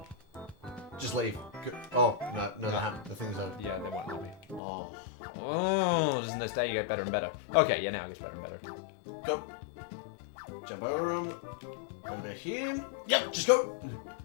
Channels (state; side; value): drops out; right; at 4.6 s